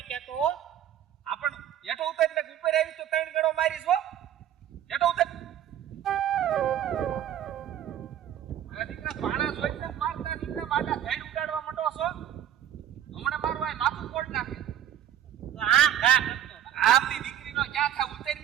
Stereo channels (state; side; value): quieter; left; 10.7 dB